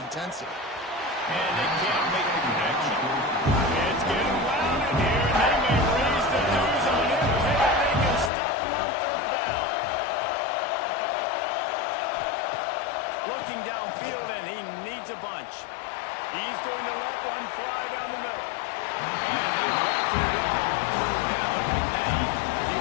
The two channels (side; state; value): right; drops out; at 8.3 s